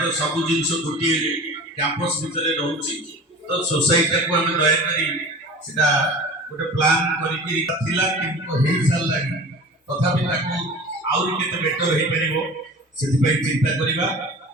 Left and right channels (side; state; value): both; normal; correlation 0.38